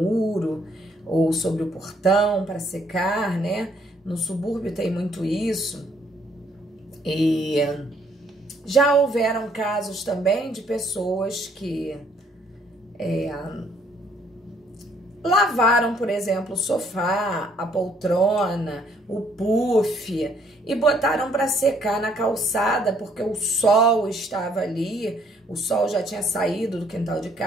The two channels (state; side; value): normal; both; correlation 0.66